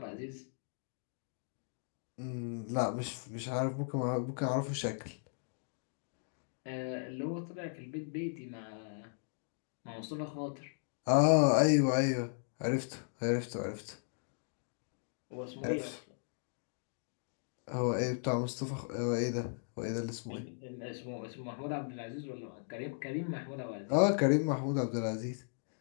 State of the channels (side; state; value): right; silent; digital silence